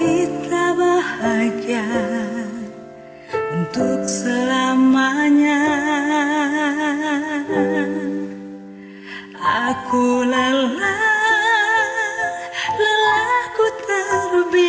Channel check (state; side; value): identical; both; correlation 1.00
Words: bahagia untuk selamanya. Aku lelahku